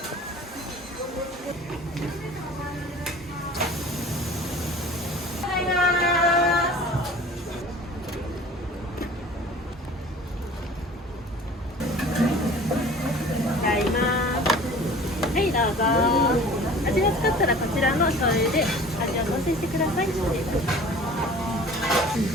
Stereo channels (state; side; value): normal; both; correlation 0.45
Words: はい、どうぞ。味がつかったらこちらの醤油で味を調整してください。